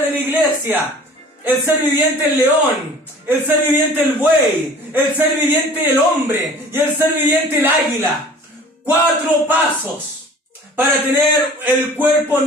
de la iglesia. El ser viviente el león, el ser viviente el buey, el ser viviente el hombre y el ser viviente el águila. 4 pasos para tener el cuerpo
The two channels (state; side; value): normal; both; correlation 0.46